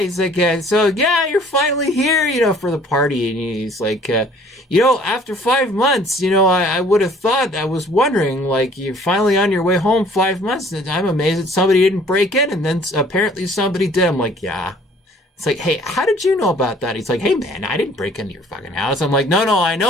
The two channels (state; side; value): normal; both; correlation 0.54